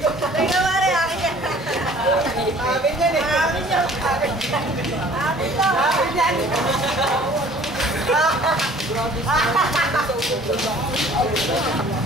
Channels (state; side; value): normal; both; correlation 0.52